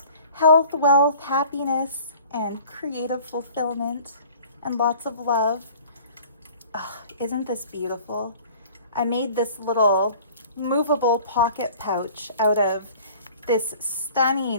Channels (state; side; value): inverted; both; correlation -0.47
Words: health, wealth, happiness, and creative fulfillment, and lots of love. Oh, isn't this beautiful? I made this little movable pocket pouch out of this